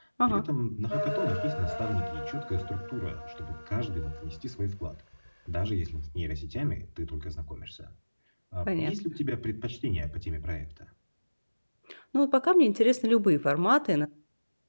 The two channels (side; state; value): both; inverted; correlation -1.00